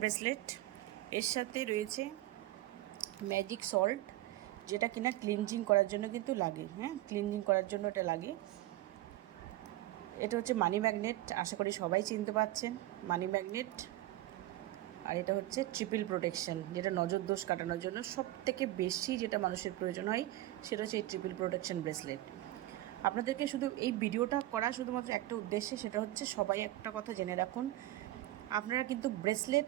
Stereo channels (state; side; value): quieter; left; 16.0 dB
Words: ব্রেসলেট। এর সাথে রয়েছে ম্যাজিক সল্ট, যেটা কিনা ক্লিনজিং করার জন্য কিন্তু লাগে। ক্লিনজিং করার জন্য এটা লাগে। এটা হচ্ছে মানি ম্যাগনেট, আশা করি সবাই চিনতে পারছেন মানি ম্যাগনেট। আর এটা হচ্ছে ট্রিপল প্রোটেকশন, যেটা নজর দোষ কাটানোর জন্য সবথেকে বেশি যেটা মানুষের প্রয়োজন হয় সেটা হচ্ছে এই ট্রিপল প্রোটেকশন ব্রেসলেট। আপনাদেরকে শুধু এই ভিডিওটা করা শুধুমাত্র একটা উদ্দেশ্যে, সেটা হচ্ছে সবাই একটা কথা জেনে রাখুন, আপনারা কিন্তু ব্রেসলেট